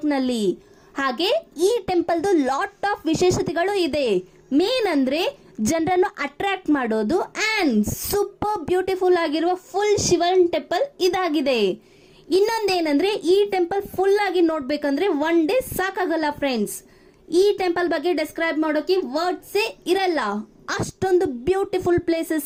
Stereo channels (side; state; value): both; identical; correlation 1.00